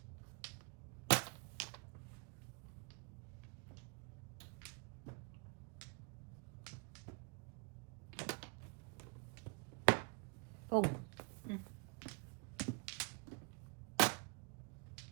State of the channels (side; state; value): left; quieter; 36.5 dB